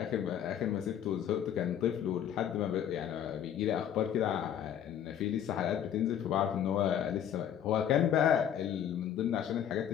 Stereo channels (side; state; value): right; quieter; 9.7 dB